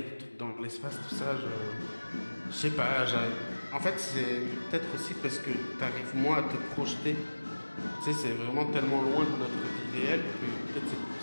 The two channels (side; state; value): both; inverted; correlation -1.00